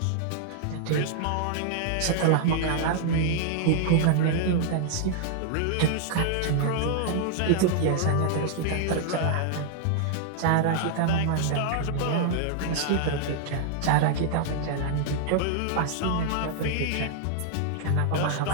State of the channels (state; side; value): different; both; correlation -0.01